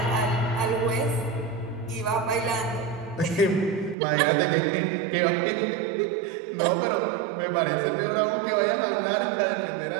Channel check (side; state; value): left; drops out; at 4.0 s